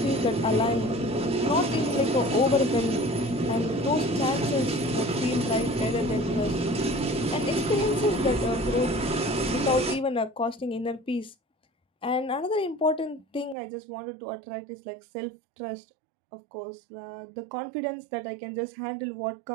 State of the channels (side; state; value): left; drops out; at 13.6 s